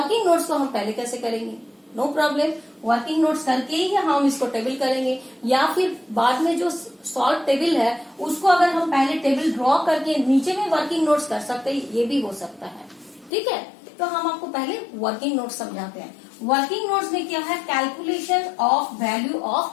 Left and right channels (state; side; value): drops out; right; at 13.3 s